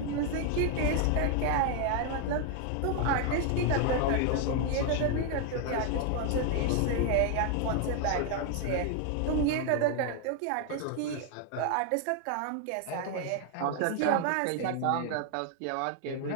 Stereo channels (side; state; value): both; different; correlation 0.00